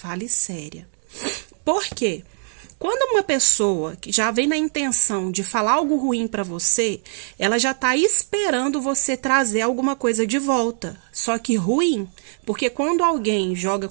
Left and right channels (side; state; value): left; silent; digital silence